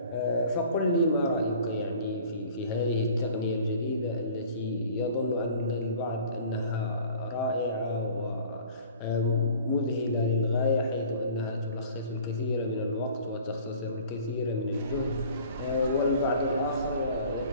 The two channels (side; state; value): both; inverted; correlation -0.47